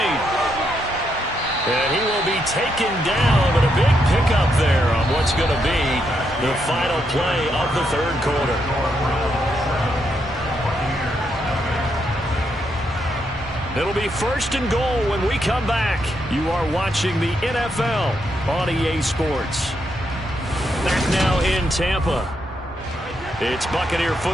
And he will be taken down, but a big pickup there on what's going to be the final play of the 3rd quarter. It'll be 1st and goal when we come back. You are watching the NFL on EA Sports. Back now in Tampa. It's Buccaneer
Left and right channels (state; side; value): normal; both; correlation 0.79